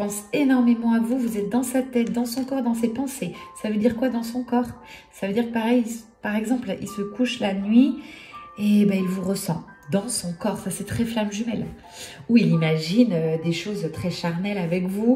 énormément à vous, vous êtes dans sa tête, dans son corps, dans ses pensées. Ça veut dire quoi dans son corps? Ça veut dire pareil, par exemple, il se couche la nuit et ben, il vous ressent dans son corps. Ça, c'est très flamme jumelle. Ou il imagine des choses très charnelles avec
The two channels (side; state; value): both; identical; correlation 1.00